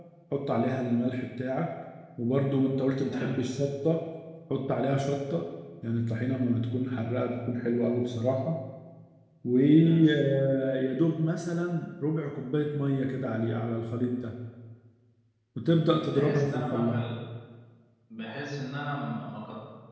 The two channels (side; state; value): both; identical; correlation 1.00